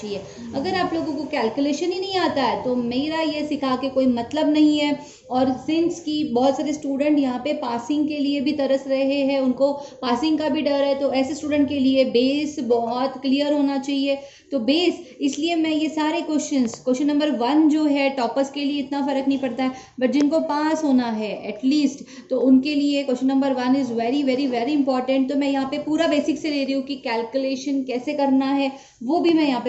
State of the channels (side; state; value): both; identical; correlation 1.00